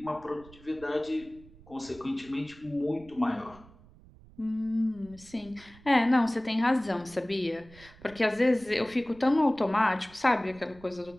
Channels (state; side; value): noise; right; rumble, 23 dB below the sound